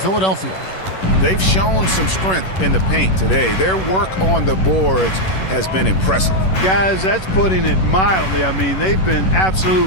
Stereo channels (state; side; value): late; right; 11 ms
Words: They've shown some strength in the paint today. Their work on the boards has been impressive. Guys, that's putting it mildly. I mean, they've been